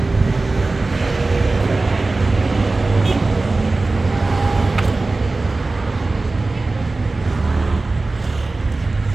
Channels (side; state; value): left; quieter; 3.4 dB